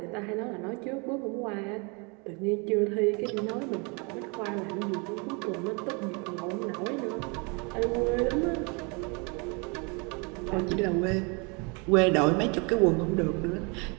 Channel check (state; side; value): quieter; left; 31.6 dB